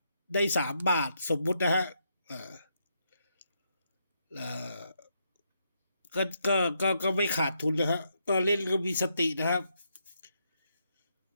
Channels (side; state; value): both; inverted; correlation -0.79